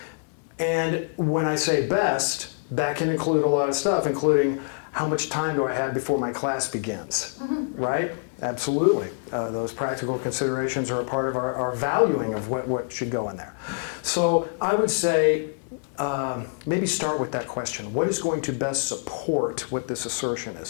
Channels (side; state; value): right; silent; digital silence